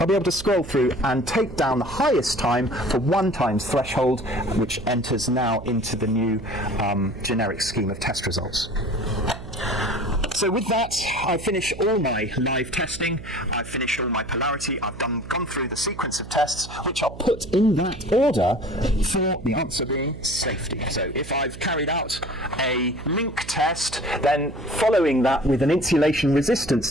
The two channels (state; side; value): noise; right; hum, 14 dB below the sound